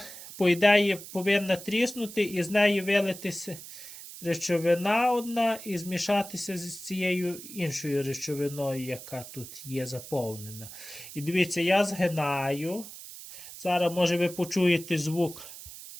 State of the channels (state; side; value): noise; right; hiss, 14 dB below the sound